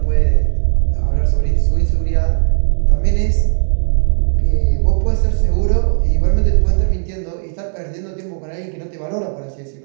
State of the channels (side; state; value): left; silent; digital silence